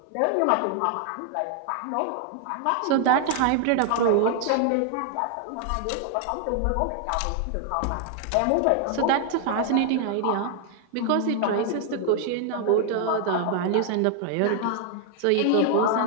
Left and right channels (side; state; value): both; different; correlation 0.00